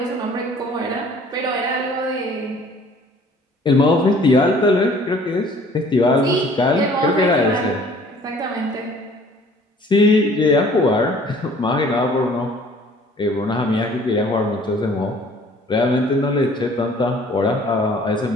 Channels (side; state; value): both; normal; correlation 0.53